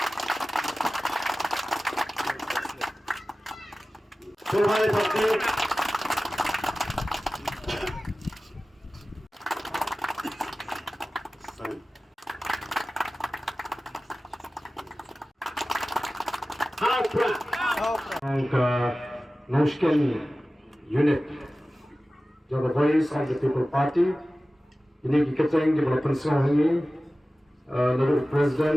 angka Noshken unit, the voice of the people party. Ini kita yang development ini, lalu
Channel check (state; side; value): normal; both; correlation 0.96